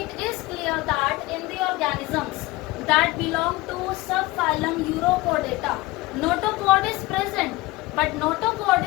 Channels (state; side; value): quieter; right; 20.3 dB